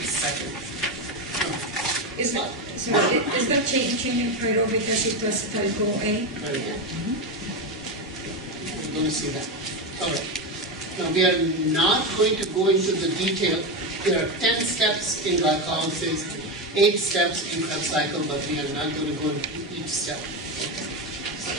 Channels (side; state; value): both; normal; correlation 0.13